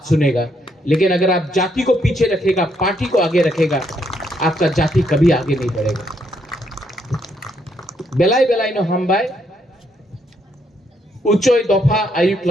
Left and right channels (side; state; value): both; normal; correlation 0.74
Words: सुनेगा, लेकिन अगर आप जाति को पीछे रखेगा, पार्टी को आगे रखेगा, आपका जाति कभी आगे नहीं बढ़ेगा। बेलाई बेलाई नो हम बाय उच्चोय दफा आयुक्त